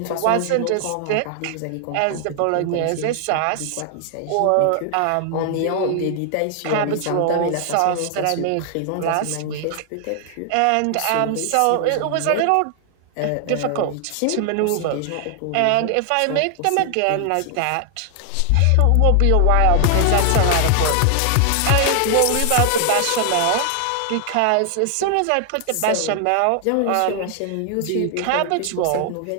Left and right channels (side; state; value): both; different; correlation 0.00